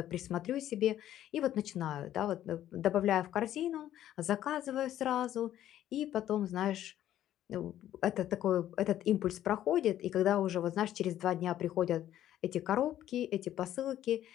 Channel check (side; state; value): right; quieter; 12.1 dB